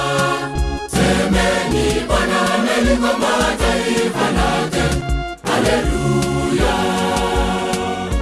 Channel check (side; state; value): both; identical; correlation 1.00